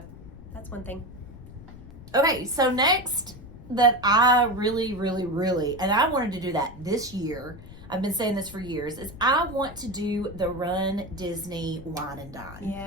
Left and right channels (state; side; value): noise; left; rumble, 16 dB below the sound